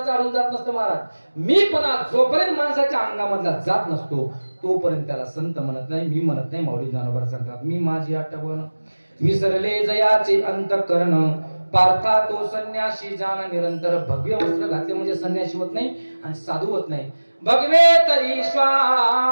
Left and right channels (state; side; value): inverted; both; correlation -1.00